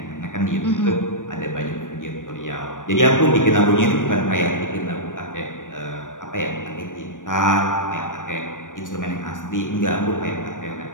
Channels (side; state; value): right; late; 0.87 ms